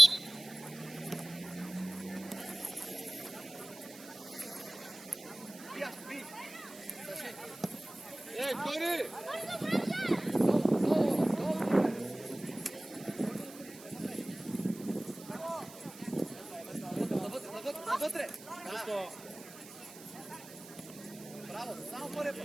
Ей, Тори! Навътре! Браво, само първия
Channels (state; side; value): noise; right; hiss, 17 dB below the sound